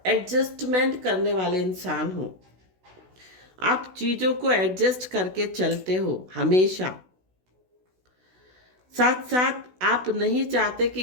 एडजस्टमेंट करने वाले इंसान हो, आप चीज़ों को एडजस्ट करके चलते हो हमेशा। साथ साथ आप नहीं चाहते कि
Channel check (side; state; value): left; late; 16 ms